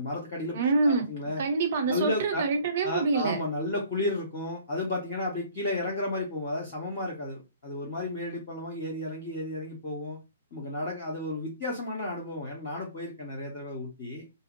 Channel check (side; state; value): both; inverted; correlation -0.51